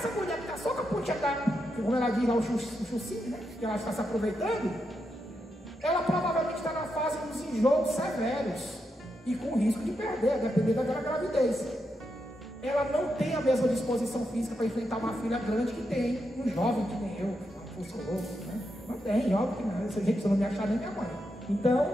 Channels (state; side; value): normal; both; correlation 0.84